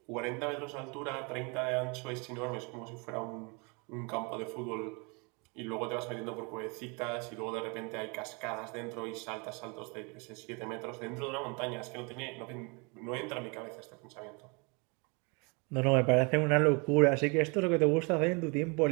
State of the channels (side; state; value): left; quieter; 31.2 dB